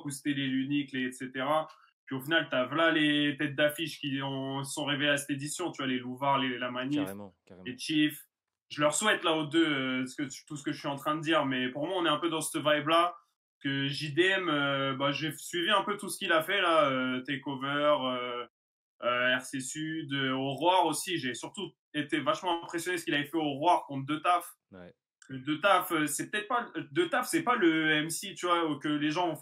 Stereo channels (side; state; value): both; identical; correlation 1.00